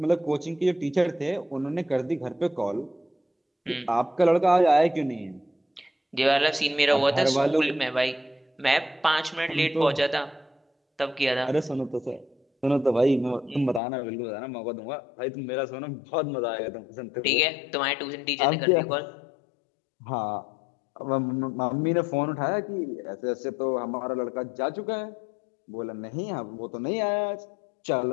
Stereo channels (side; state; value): right; drops out; at 13.8 s